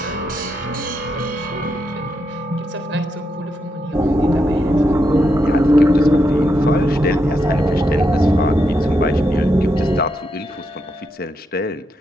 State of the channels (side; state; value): both; normal; correlation 0.83